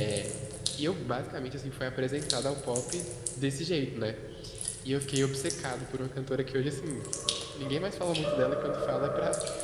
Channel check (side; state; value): both; identical; correlation 1.00